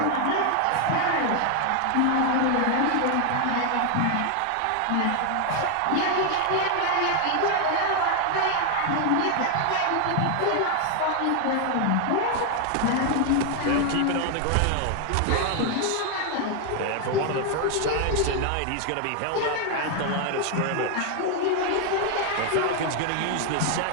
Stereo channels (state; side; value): different; both; correlation 0.00